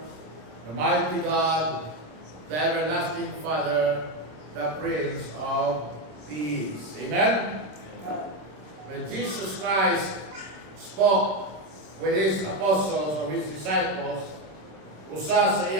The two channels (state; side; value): late; left; 26 ms